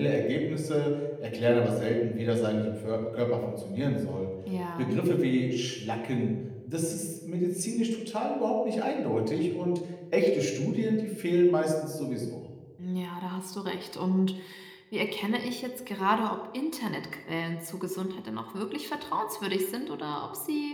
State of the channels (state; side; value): identical; both; correlation 1.00